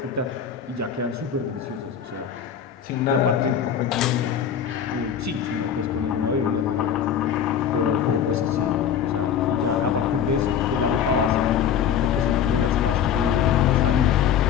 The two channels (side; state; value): right; quieter; 8.4 dB